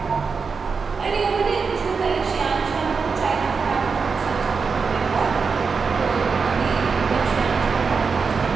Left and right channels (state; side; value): quieter; left; 5.2 dB